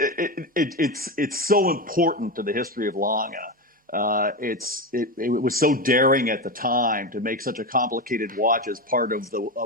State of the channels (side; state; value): both; normal; correlation 0.17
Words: it's so important to the history of Lange. It was so daring at the time to make such a complicated watch as part of the